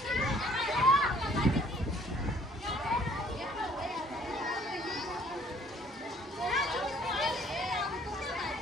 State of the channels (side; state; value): both; normal; correlation 0.59